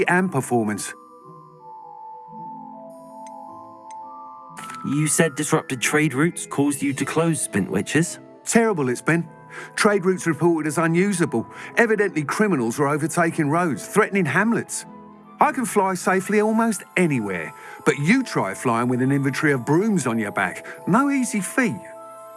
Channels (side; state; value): both; identical; correlation 1.00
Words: and performance. You said disrupted trade routes caused you to close Spintwitches? Terrible it's been. Trade routes reported as unusable. Evidently criminals were overtaking roads, threatening hamlets. I can fly safely almost anywhere, but you try flying with an inventory of brooms on your back. No easy feat.